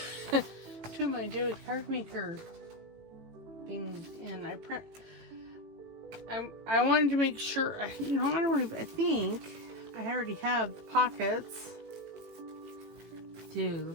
of my David card maker things in. I wanted to make sure, I think I already have the pockets. Dude,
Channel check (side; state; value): left; late; 18 ms